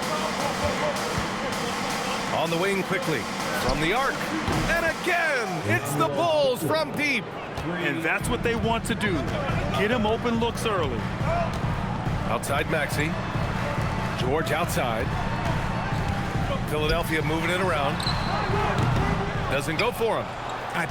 On the wing quickly, from the arc. And again, it's the Bulls from deep. And that's what they want to do. Get him open looks early. Outside Maxey. George outside. Philadelphia moving it around. Doesn't go for him. I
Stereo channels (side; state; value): both; identical; correlation 1.00